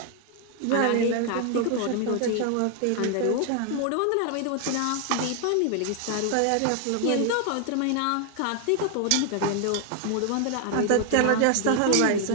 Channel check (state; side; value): different; both; correlation 0.00